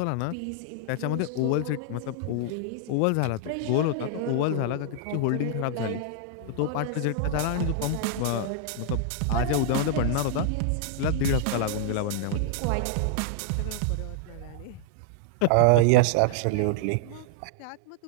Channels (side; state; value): both; different; correlation -0.01